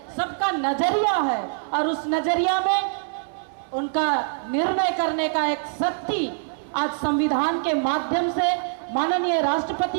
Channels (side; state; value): left; silent; digital silence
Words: सबका नजरिया है और उस नजरिया में उनका निर्णय करने का एक शक्ति आज संविधान के माध्यम से माननीय